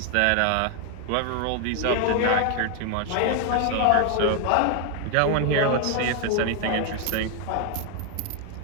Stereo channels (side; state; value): both; different; correlation 0.01